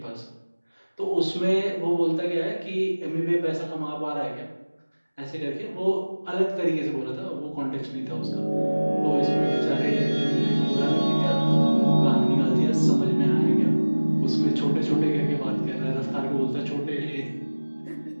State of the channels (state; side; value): inverted; both; correlation -1.00